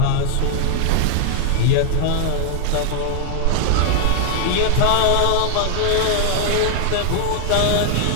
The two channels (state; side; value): different; both; correlation 0.00